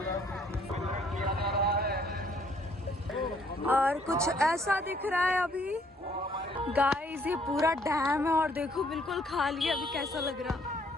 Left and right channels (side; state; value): both; normal; correlation 0.64